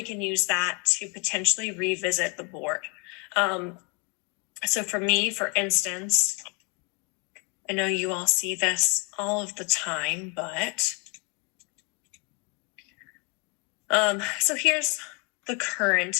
can use that to potentially revisit the board. So for me, for instance, I know you all see this all of the time, but so here's the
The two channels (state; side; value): quieter; right; 31.0 dB